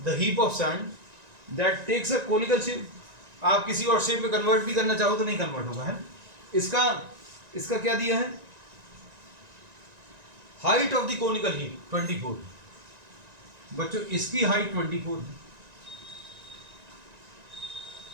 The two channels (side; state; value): left; late; 1.9 ms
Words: the heap of sand that takes a conical shape. आप किसी और शेप में कन्वर्ट भी करना चाहो तो नहीं कन्वर्ट होगा, है। इसका इसका क्या दिया है, height of the conical heap 24। बच्चों इसकी हाइट 24